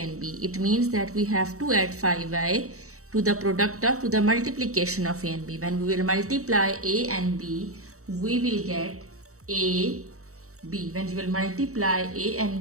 b. It means that we have to add 5y to the to the multiplication of a and b. When we will multiply a and b, we will get a, b. When you will multiply a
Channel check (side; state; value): left; late; 0.64 ms